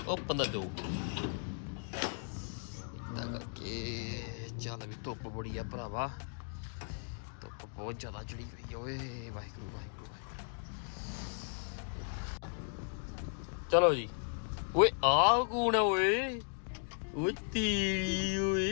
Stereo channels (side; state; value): right; silent; 54 dB below the other